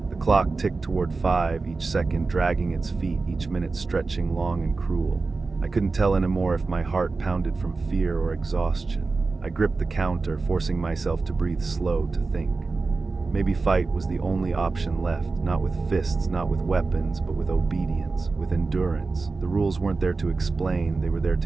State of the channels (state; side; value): quieter; left; 4.0 dB